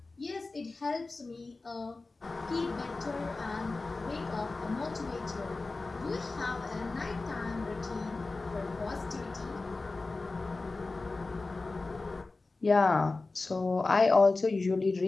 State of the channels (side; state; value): right; quieter; 3.5 dB